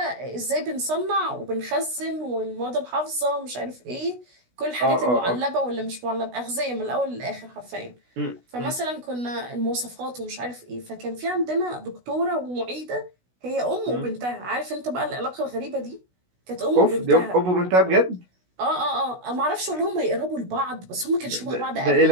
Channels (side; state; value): left; late; 16 ms